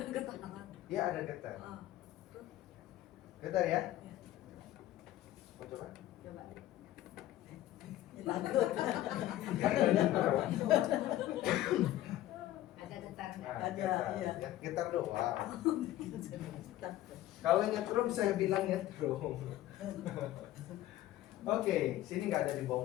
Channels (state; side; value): quieter; right; 14.3 dB